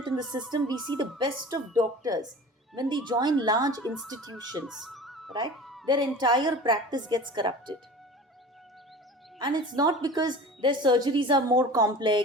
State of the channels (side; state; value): both; normal; correlation 0.39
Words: in the system, we see the best of doctors, when they join large institutions, right, their entire practice gets corrupted. And it's not because their surgeries are more